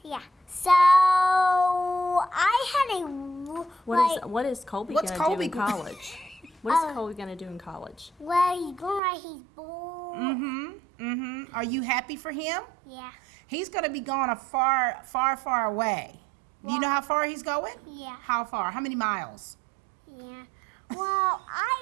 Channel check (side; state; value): left; drops out; at 9.0 s